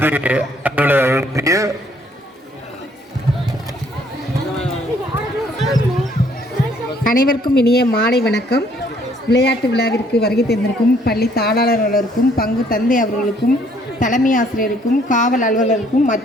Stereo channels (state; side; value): normal; both; correlation 0.64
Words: அனைவருக்கும் இனிய மாலை வணக்கம். விளையாட்டு விழாவிற்கு வருகை தந்திருக்கும் பள்ளி தாளாளர்களுக்கும் பங்கு தந்தை அவர்களுக்கும் தலைமை ஆசிரியருக்கும் காவல் அலுவலருக்கும்